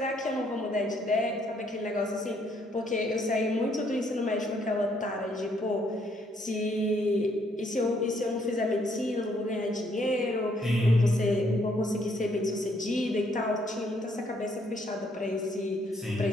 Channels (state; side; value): normal; both; correlation 0.69